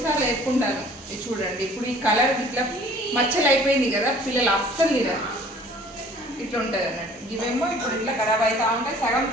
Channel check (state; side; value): normal; both; correlation 0.52